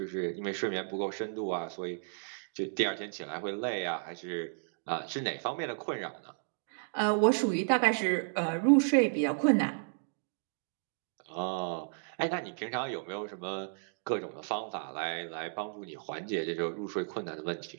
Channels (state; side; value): silent; left; digital silence